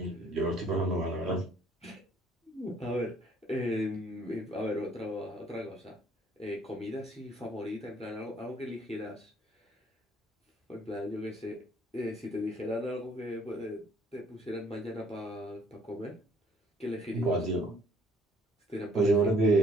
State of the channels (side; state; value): both; normal; correlation 0.62